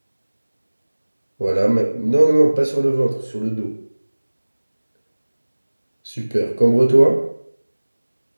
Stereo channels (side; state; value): both; inverted; correlation -1.00